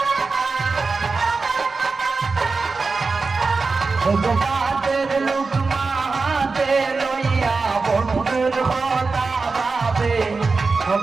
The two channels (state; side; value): quieter; left; 4.2 dB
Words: পাতের লোক মাহাতে লইয়া বন্ধুর কথা ভাবে